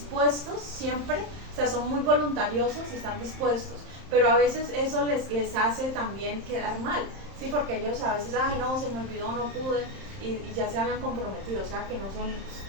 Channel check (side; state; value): left; late; 31 ms